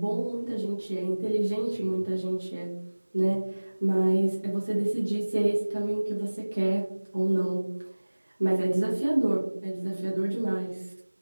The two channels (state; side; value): inverted; both; correlation -1.00